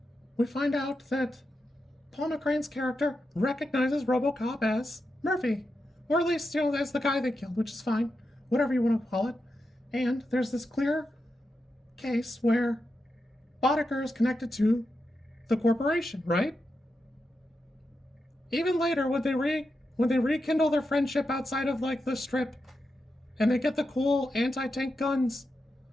we find out that Paul McCrane's character recognizes Robocop as Murphy. Or at least, as the guy they killed, which is fine. Whatever you want to call it. And there's this clear case where Boddicker is connected to the corporation, right? Even later, when they rekindle their friendship outside of, the strip, and they get the cool anti-tank guns,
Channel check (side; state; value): both; normal; correlation 0.88